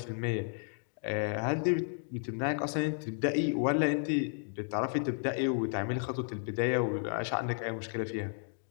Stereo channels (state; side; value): silent; right; 56 dB below the other